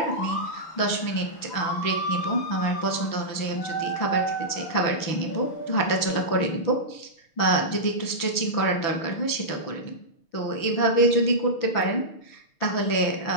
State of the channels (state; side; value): late; right; 6.5 ms